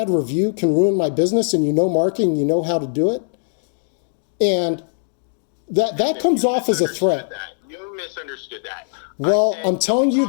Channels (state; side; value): silent; right; digital silence